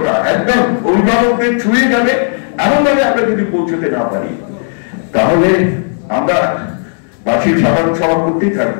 একদম অভিভাবকদের ছুঁয়ে যাবে এমন ভাবে আমরা যদি পৌঁছতে না পারি, তাহলে আমরা বার্ষিক সাধারণ সভা করতেই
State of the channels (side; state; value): right; silent; digital silence